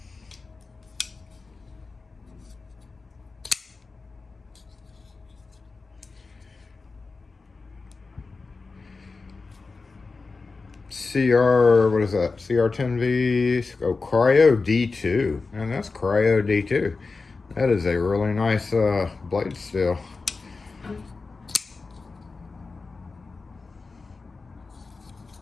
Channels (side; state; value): right; quieter; 4.1 dB